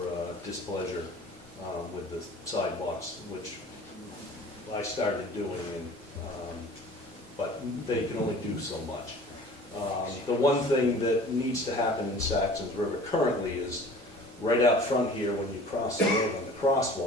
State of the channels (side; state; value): both; normal; correlation 0.45